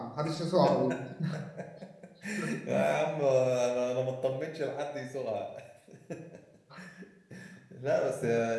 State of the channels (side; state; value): both; identical; correlation 1.00